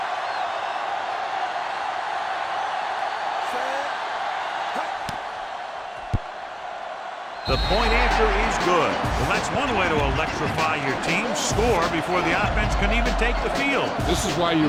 The point answer is good. Well, that's one way to electrify your team. Score before the offense can even take the field. This is why your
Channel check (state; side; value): identical; both; correlation 1.00